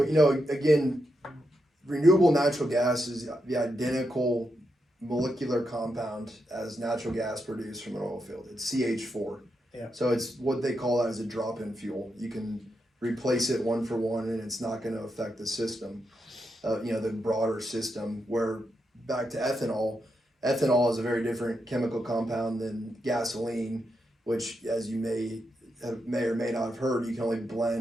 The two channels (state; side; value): normal; both; correlation 0.84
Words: again, renewable natural gas is the identical molecular compound as natural gas produced from an oil field. It's CH4. Yeah. So it's what they call as a drop-in fuel. You can replace it one for one, and it's not going to affect the system, the broader system. Where back to ethanol, ethanol is a very different chemical compound than gasoline, which, as you may or may not have heard, you can only